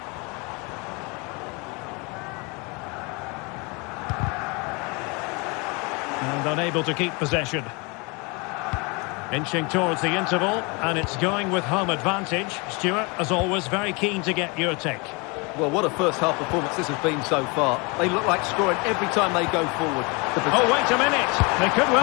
And unable to keep possession. Inching towards the interval, and it's going with home advantage. Stuart, as always, very keen to get your take. Well, what a first-half performance this has been so far. They look like scoring every time they go forward. Oh, wait a minute. They could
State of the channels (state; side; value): quieter; right; 29.2 dB